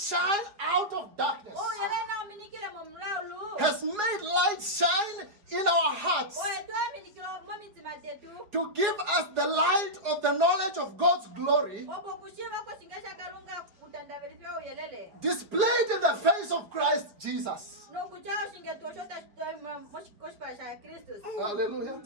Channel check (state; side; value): late; left; 4.9 ms